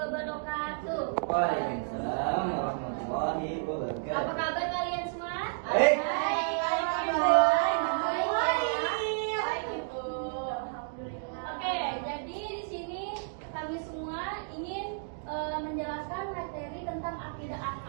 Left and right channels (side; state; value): left; silent; digital silence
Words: Waalaikumsalam warahmatullahi wabarakatuh. Apa kabar kalian semua? Baik. Oke, jadi di sini kami semua ingin menjelaskan materi tentang akidah